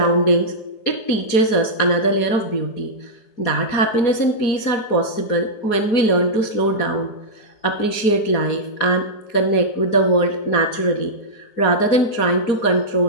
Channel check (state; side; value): late; right; 4.7 ms